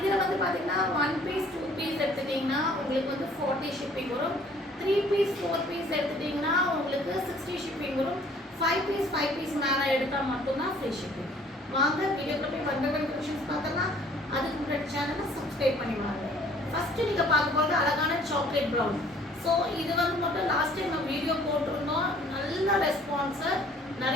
வந்து பாத்தீங்கன்னா 1 piece 2 piece எடுத்துட்டீங்கன்னா உங்களுக்கு வந்து 40 shipping வரும். 3 piece 4 piece எடுத்துட்டீங்கன்னா உங்களுக்கு 60 shipping வரும். 5 piece மேல எடுத்தா மட்டும் தான் free shipping. வாங்க வீடியோக்குள்ள போய் one by one collections பார்த்தலாம். அதுக்கு முன்னாடி சேனலை subscribe பண்ணி வாங்க. ஃபர்ஸ்ட் நீங்க பார்க்க போறது அழகான சாக்லேட் பிரவுன். சோ இது வந்து மட்டும் லாஸ்ட் டைம் நம்ம வீடியோ போட்டுருந்தோம். நல்ல ரெஸ்பான்ஸ்,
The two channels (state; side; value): normal; both; correlation 0.56